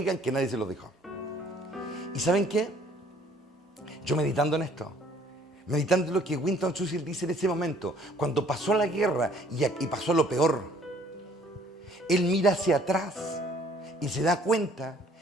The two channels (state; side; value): normal; both; correlation 0.58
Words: que nadie se lo dijo. ¿Y saben qué? Yo meditando en esto, meditando en lo que Winston Churchill dice en ese momento, cuando pasó la guerra y pasó lo peor, él mira hacia atrás y se da cuenta